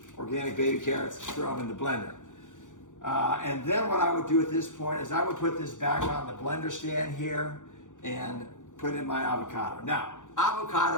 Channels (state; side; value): late; right; 0.87 ms